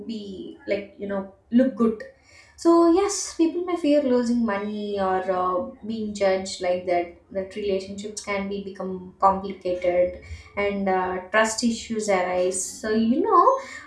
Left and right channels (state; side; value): identical; both; correlation 1.00